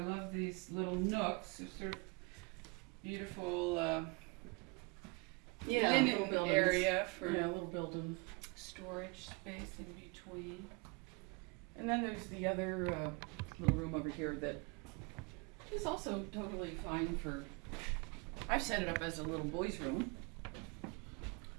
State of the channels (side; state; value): left; quieter; 28.4 dB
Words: these little nooks. They're sort of beautiful linen little buildings. area for Yeah, little building. storage space in between. And then there's the other little room over here that is also totally fine for, I've set it up as a little boys' room.